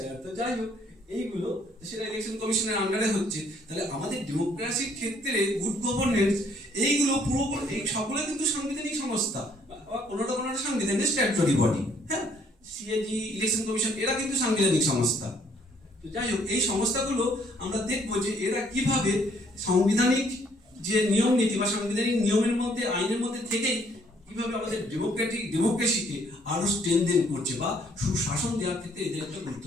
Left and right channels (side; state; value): both; normal; correlation 0.65